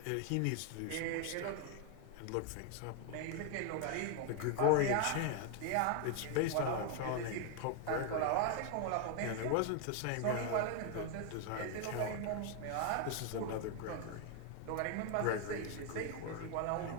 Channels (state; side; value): different; both; correlation 0.01